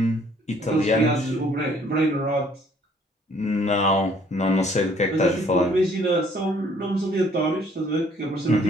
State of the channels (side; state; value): both; normal; correlation 0.61